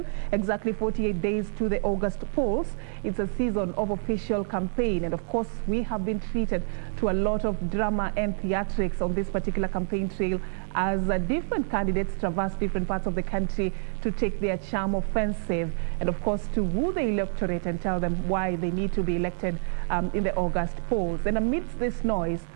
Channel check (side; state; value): left; silent; 60 dB below the other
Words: exactly 48 days to the August polls. It's a season of official campaign, and of course, we have been treated to a lot of drama and theatrics on this particular campaign trail as different candidates traverse different parts of the country to take their charm offensive, and of course, to woo the electorate and tell them why they need to be elected in the August polls. And amidst this noise,